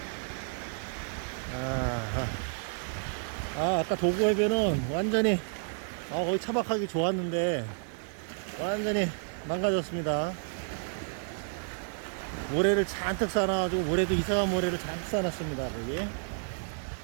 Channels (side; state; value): left; silent; 57 dB below the other